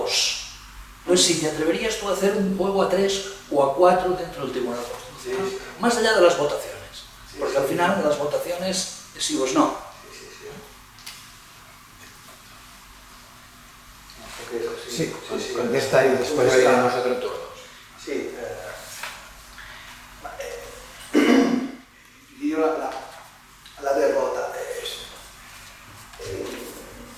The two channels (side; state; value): both; identical; correlation 1.00